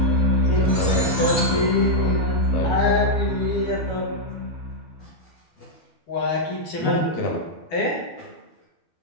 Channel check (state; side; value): late; right; 12 ms